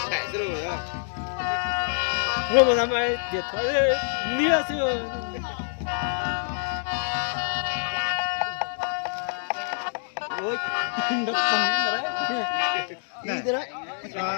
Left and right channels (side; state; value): right; silent; digital silence